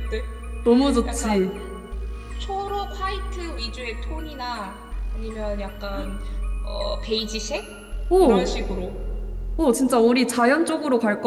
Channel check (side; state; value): both; identical; correlation 1.00